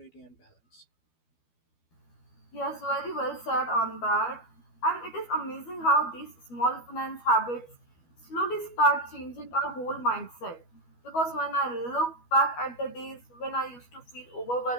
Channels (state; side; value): late; right; 12 ms